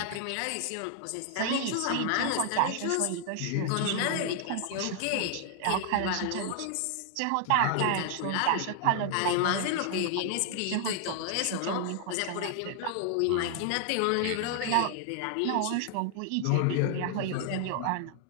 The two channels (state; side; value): different; both; correlation 0.00